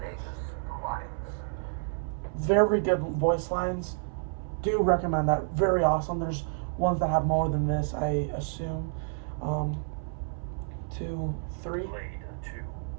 Alliance? Very good voice lines. Do recommend that. Very awesome. There's ones that have more than this, I assume. 2, 3. Blade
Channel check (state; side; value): silent; left; 58 dB below the other